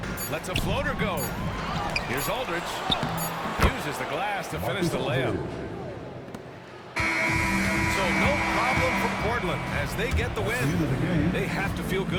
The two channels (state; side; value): identical; both; correlation 1.00